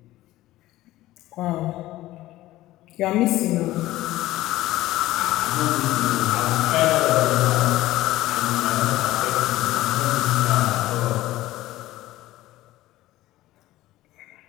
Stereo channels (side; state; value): right; quieter; 16.1 dB